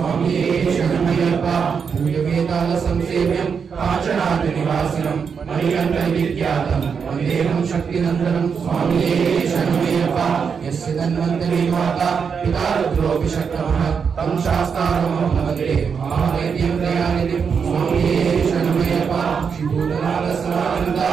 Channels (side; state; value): left; quieter; 6.3 dB